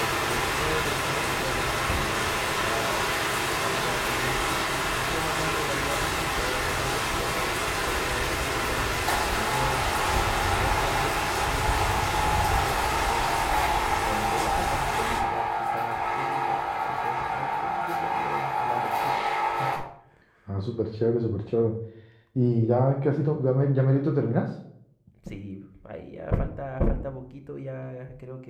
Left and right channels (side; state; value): both; identical; correlation 1.00